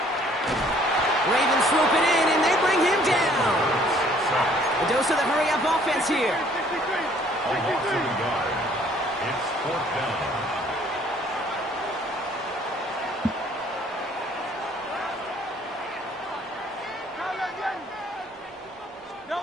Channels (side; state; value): both; normal; correlation 0.59